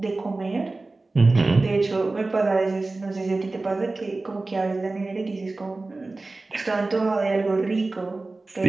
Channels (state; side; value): quieter; left; 3.3 dB